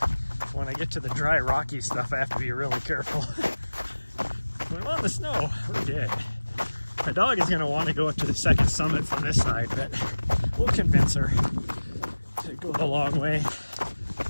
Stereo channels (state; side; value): inverted; both; correlation -1.00